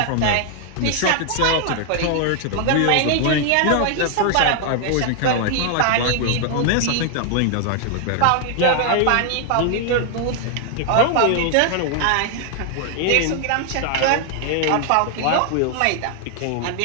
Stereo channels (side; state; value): both; different; correlation 0.00